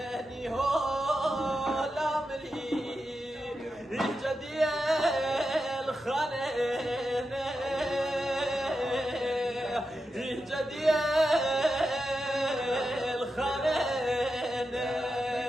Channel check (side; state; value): both; normal; correlation 0.89